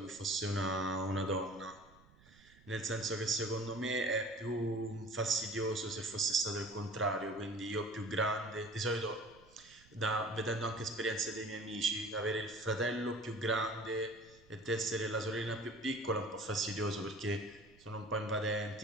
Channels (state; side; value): noise; right; rumble, 26 dB below the sound